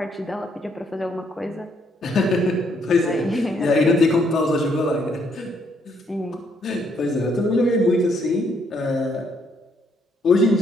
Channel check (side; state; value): both; normal; correlation 0.71